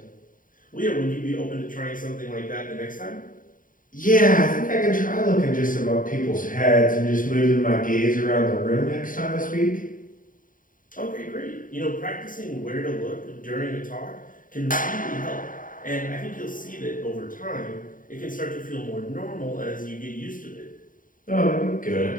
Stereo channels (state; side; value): late; right; 0.39 ms